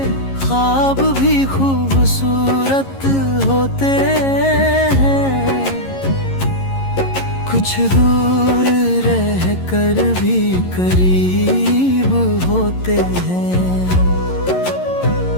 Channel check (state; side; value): late; right; 11 ms